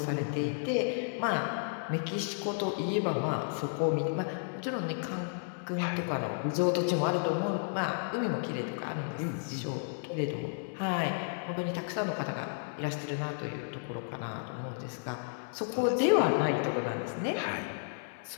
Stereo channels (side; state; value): right; silent; 56 dB below the other